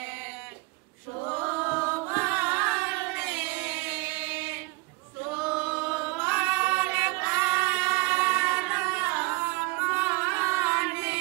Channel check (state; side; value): quieter; left; 25.9 dB